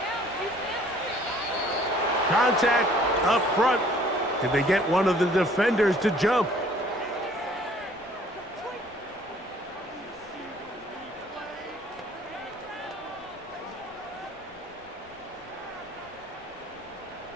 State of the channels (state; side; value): noise; left; rumble, 26 dB below the sound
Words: Contact up front. Did they get one of the defenders to jump?